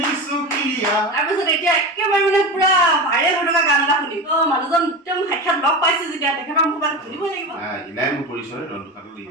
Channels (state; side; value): normal; both; correlation 0.25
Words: তাৰপিছত এতিয়া একেবাৰে মানে পুৰা ভাইৰেল হৈ থকা গান এটা শুনিম। মানুহজন একদম সাক্ষাৎ লগ পাইছে যেতিয়া তেখেতৰ মুখত শুনিব লাগিব। ইনাই মোৰ পৰিচয় ৰন্ধুকাটো